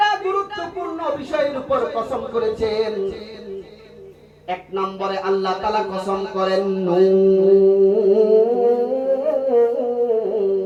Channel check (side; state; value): both; identical; correlation 1.00